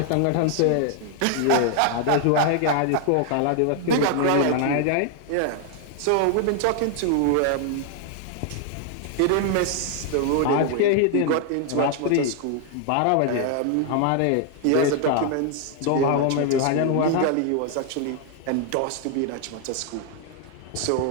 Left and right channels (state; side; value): different; both; correlation 0.00